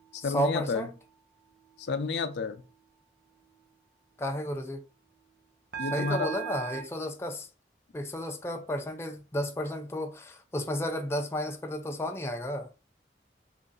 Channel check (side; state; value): both; normal; correlation 0.46